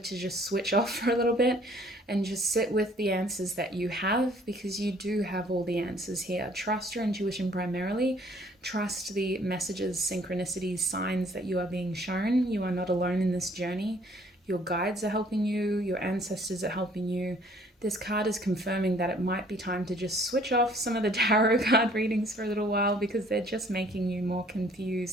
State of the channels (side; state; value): both; normal; correlation 0.58